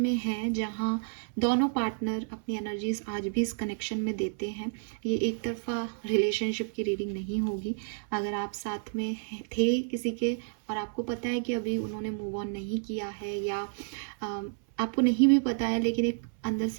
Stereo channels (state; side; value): silent; left; 56 dB below the other